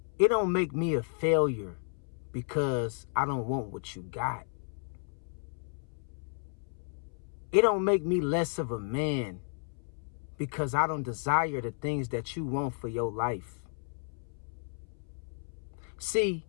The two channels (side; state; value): right; silent; 56 dB below the other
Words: It don't make me a failure because I don't want what you got. It don't make me less of a man because I don't desire the things that you want for your life. See,